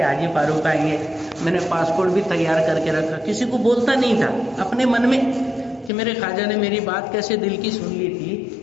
حاجی فاروق آئیں گے۔ میں نے پاسپورٹ بھی تیار کر کے رکھا، کسی کو بولتا نہیں تھا، اپنے من میں کہ میرے خواجہ نے میری بات کیسے دل کی سن لی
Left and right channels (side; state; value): right; drops out; at 5.9 s